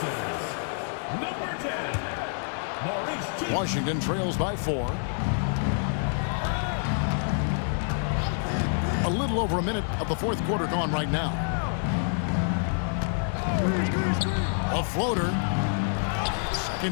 Number 10. Washington trails by 4. A little over a minute of the fourth quarter gone right now. A floater.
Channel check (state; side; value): silent; right; digital silence